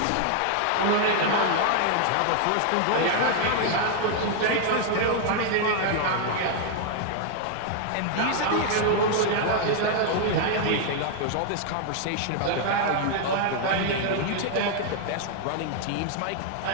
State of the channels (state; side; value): different; both; correlation 0.00